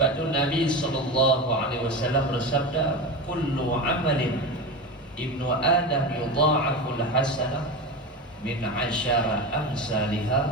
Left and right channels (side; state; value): both; normal; correlation 0.23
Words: tu Nabi sallallahu alaihi wasallam bersabda, kullu amalin ibnu Adam yudha'aful hasanah min 'ashara